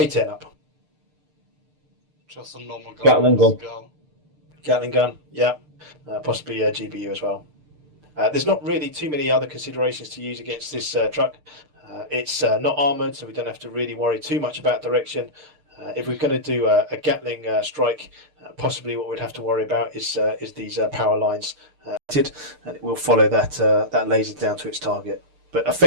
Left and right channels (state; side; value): late; left; 6.7 ms